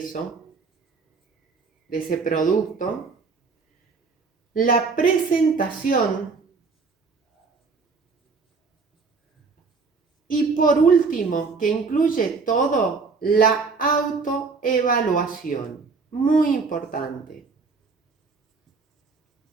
de ese producto. La presentación. Y por último, que incluye todo, la autoevaluación. Muy importante.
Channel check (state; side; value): quieter; left; 4.5 dB